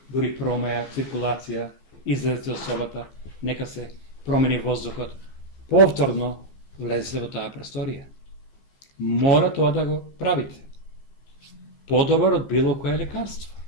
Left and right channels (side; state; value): right; late; 15 ms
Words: дури промаја, циркулација, излезете од собата, нека се промени воздухот. Повторно влезете во таа просторија. Мора тоа да го правите. Подобар од било кое лекарство.